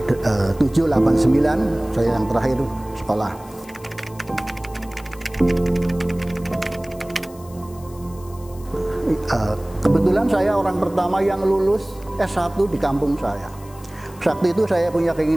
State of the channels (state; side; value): noise; left; hiss, 23 dB below the sound